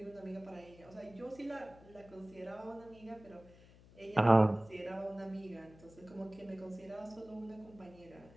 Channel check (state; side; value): noise; left; hum, 22 dB below the sound